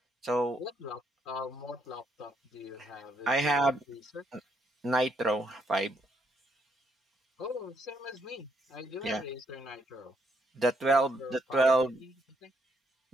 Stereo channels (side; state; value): both; normal; correlation 0.74